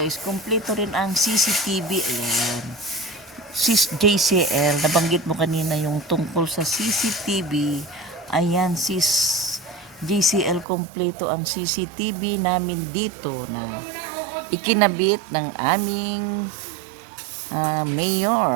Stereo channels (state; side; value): drops out; left; at 10.7 s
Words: kompleto rin ang CCTV. Ayan. Sis JCL, nabanggit mo kanina yung tungkol sa CCTV. Ayan, sis JCL, kompleto ang CCTV namin dito na ikinabit ng aming